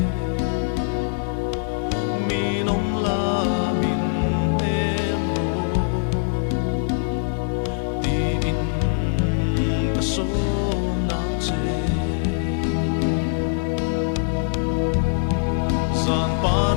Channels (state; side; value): silent; right; 64 dB below the other